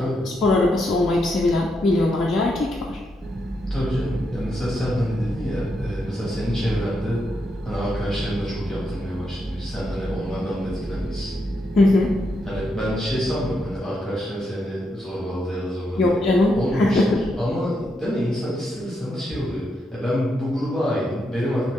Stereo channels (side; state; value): both; normal; correlation 0.81